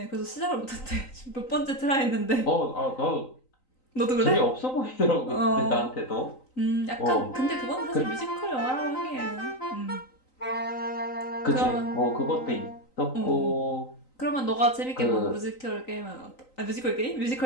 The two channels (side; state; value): right; late; 3.9 ms